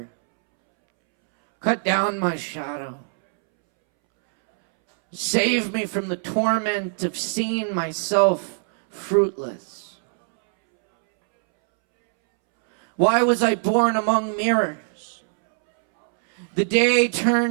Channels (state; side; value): silent; left; 64 dB below the other